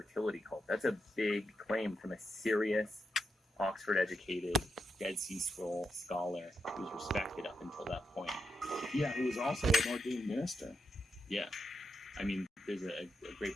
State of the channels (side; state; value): both; normal; correlation 0.84